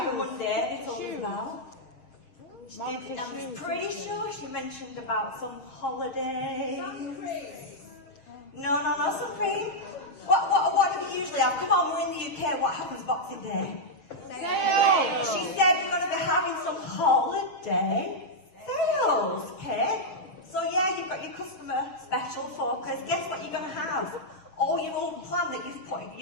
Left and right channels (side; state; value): right; late; 6.7 ms